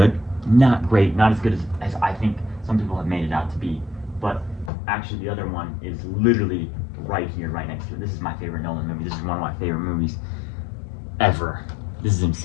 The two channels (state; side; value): drops out; right; at 4.7 s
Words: Not great, not as good as I think some people have made it out to be, but actually the other one is literally right here, right next to it. This is my favorite Nolan movie. This is one of my favorite movies ever. This is